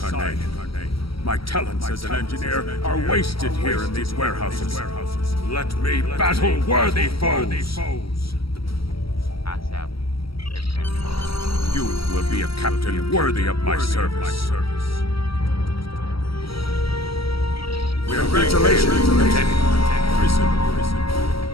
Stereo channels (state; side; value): late; right; 0.75 ms